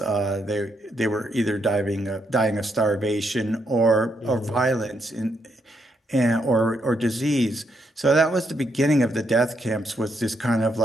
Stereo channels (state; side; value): normal; both; correlation 0.78